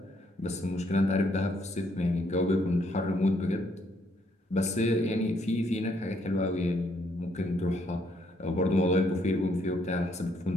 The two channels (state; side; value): normal; both; correlation 0.71